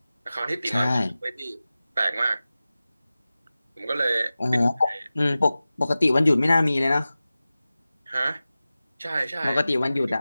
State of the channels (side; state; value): both; inverted; correlation -0.96